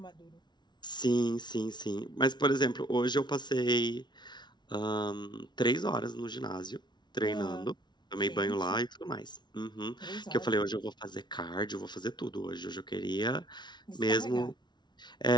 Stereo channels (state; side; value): late; right; 0.21 ms